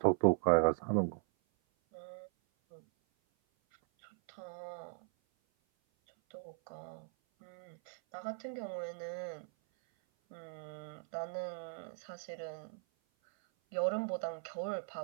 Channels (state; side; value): silent; left; 52 dB below the other